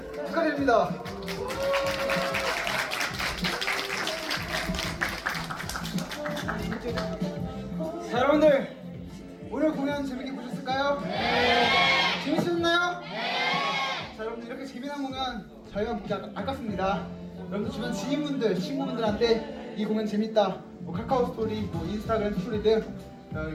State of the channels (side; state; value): both; identical; correlation 1.00